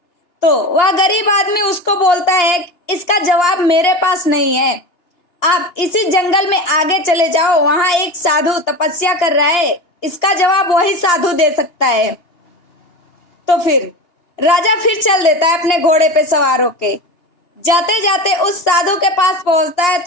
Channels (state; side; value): late; right; 2.8 ms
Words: तो वह गरीब आदमी उसको बोलता है, इसका जवाब मेरे पास नहीं है, आप इसी जंगल में आगे चले जाओ, वहां एक साधु तपस्या कर रहा है, इसका जवाब वही साधु दे सकता है। तो फिर राजा फिर चल देता है अपने घोड़े पे सवार होके। जाते जाते उस साधु के पास पहुंचता है